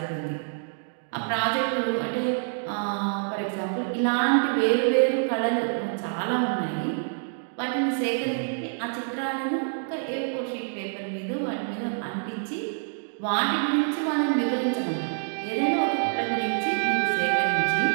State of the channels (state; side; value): silent; left; digital silence